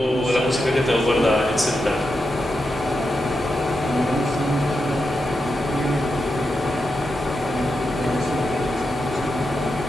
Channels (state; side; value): normal; both; correlation 0.87